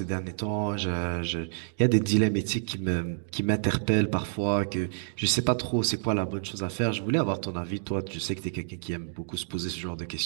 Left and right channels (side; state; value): left; silent; digital silence